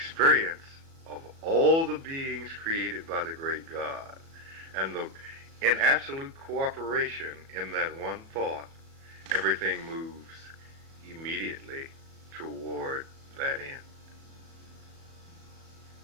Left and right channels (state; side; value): late; left; 37 ms